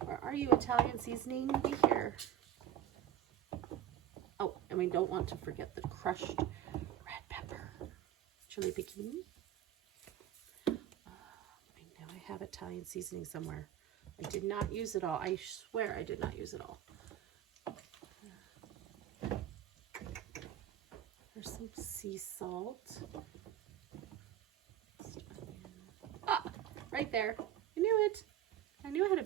Where are you, Italian seasoning? Be here. Oh, and we don't want to forget the crushed red pepper. chili piquin. I know I have Italian seasoning somewhere. I did not use it all. I swear I did not use it all. There's some sea salt. Ah, right there. I knew it. I knew I had a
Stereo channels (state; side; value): quieter; left; 11.3 dB